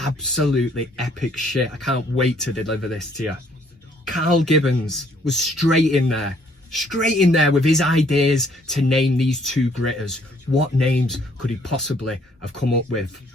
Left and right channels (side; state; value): both; normal; correlation 0.64